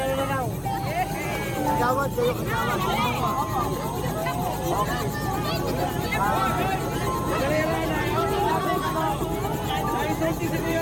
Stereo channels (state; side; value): identical; both; correlation 1.00